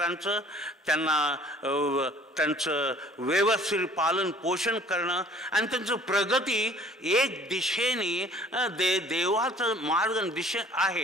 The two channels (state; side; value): normal; both; correlation 0.52